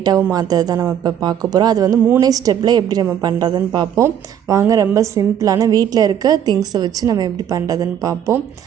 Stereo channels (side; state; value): left; quieter; 9.5 dB